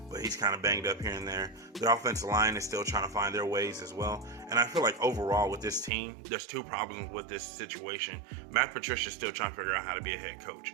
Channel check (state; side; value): drops out; left; at 5.9 s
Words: but he's kind of banged up here and there. The offensive line is still trying to find their ways as well. And I feel like overall with this team, there's two problems with this situation. Matt Patricia is still trying to figure out how to be a head coach.